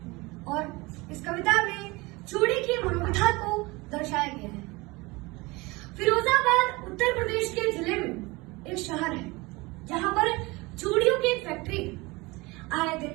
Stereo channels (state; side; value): quieter; left; 23.5 dB